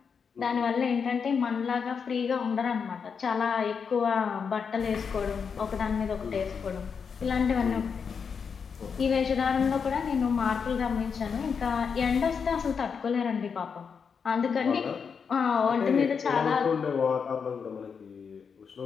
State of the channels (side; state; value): right; quieter; 6.2 dB